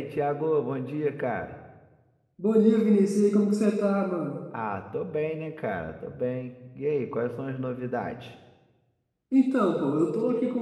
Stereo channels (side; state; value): both; identical; correlation 1.00